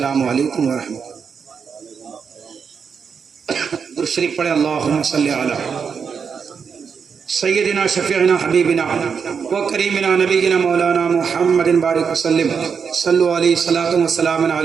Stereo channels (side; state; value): left; quieter; 6.3 dB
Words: علیکم ورحمۃ اللہ۔ درود شریف پڑھیں، اللہم صلی علی سیدنا شفیعنا حبیبنا و کریمنا نبینا مولانا محمد بارک وسلم۔ صلو علیہ صلاۃ و سلام